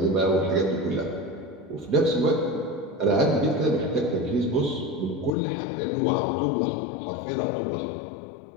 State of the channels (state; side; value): drops out; right; at 5.3 s